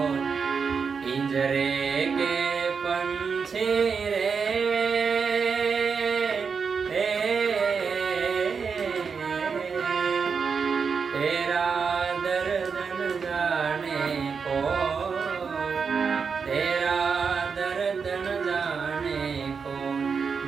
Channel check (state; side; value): quieter; left; 5.7 dB